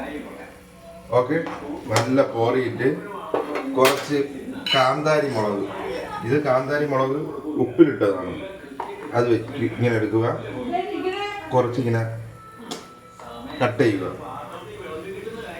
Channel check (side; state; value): both; identical; correlation 1.00